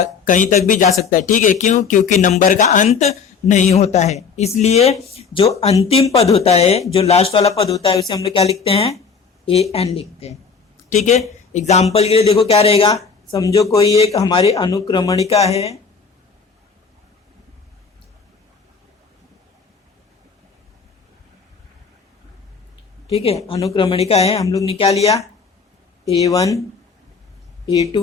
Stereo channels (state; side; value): quieter; right; 5.6 dB